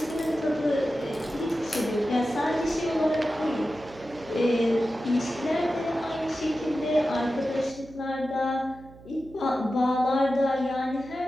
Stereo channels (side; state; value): right; noise; hum, 21 dB below the sound